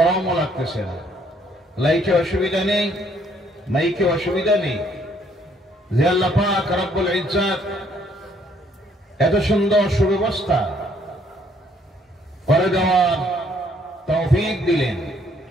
লাগতেছে না, লাইটে অসুবিধা নেই, মাইকে অসুবিধা নেই। যে আল্লাহ পাক রব্বুল ইজ্জত এত সুন্দর সুব্যবস্থা করে দেওয়ার তৌফিক দিলেন,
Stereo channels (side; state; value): both; normal; correlation 0.66